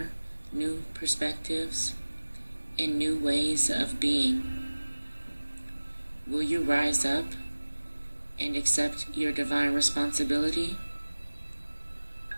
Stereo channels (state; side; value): inverted; both; correlation -1.00